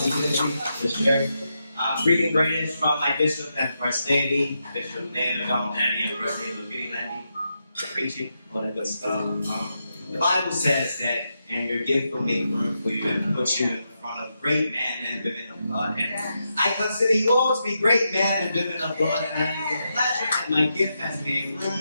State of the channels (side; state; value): both; inverted; correlation -0.85